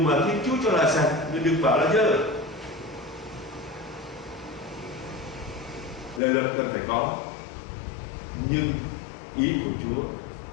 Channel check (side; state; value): right; drops out; at 6.2 s